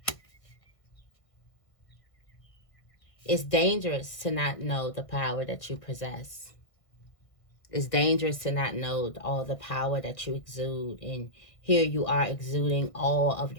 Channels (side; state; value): right; late; 1.6 ms